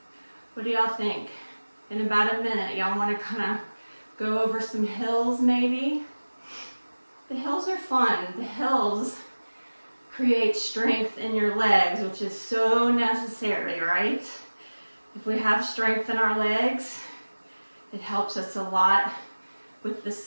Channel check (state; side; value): inverted; both; correlation -1.00